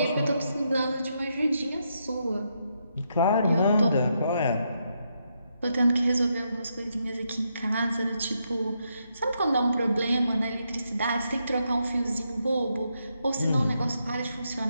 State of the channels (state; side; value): inverted; both; correlation -0.80